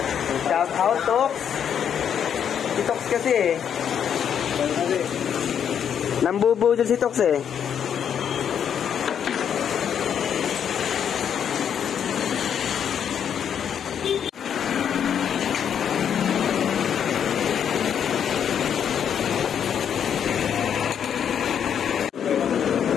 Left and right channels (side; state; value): right; quieter; 8.4 dB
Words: Shout out, Tox. Si Tox kasi eh. Nambubudol si Tox eh.